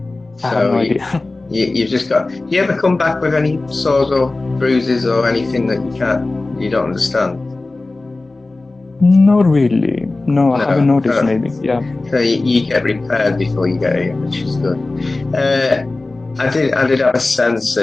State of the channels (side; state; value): right; quieter; 3.2 dB